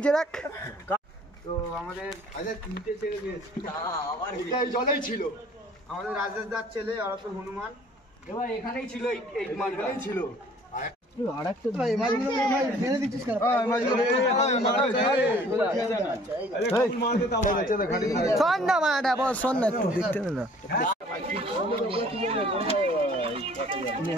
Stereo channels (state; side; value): normal; both; correlation 0.54